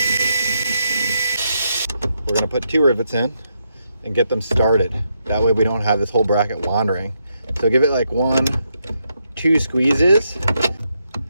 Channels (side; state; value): both; inverted; correlation -0.80